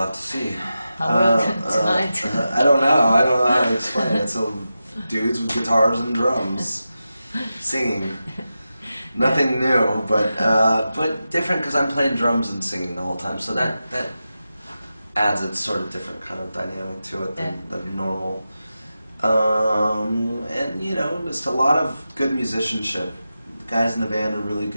have to see. How will tonight? I don't know. I don't know how to explain it. So dudes with guitars and drums singing. Nothing new, but different because I'm playing drums and singing the whole time. So that adds a sort of different kind of dynamic to it than normal. And you know, just a lot of good musicianship. The guys in the band are really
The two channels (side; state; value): both; inverted; correlation -0.92